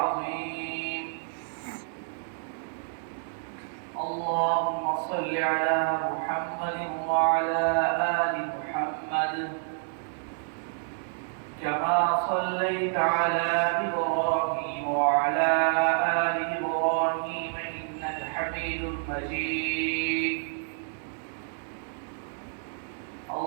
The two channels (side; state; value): left; silent; digital silence